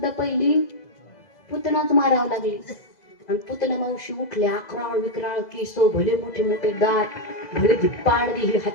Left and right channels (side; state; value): right; late; 2.0 ms